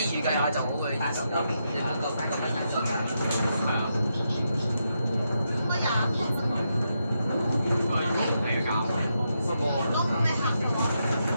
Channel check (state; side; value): inverted; both; correlation -0.83